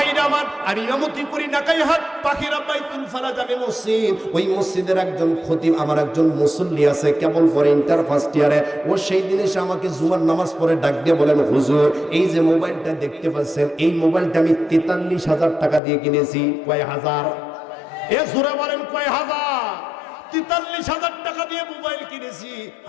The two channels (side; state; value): right; drops out; at 15.8 s